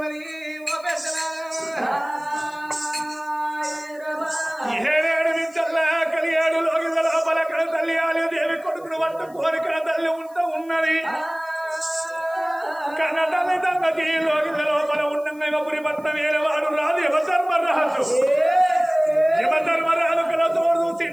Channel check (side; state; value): left; noise; hiss, 27 dB below the sound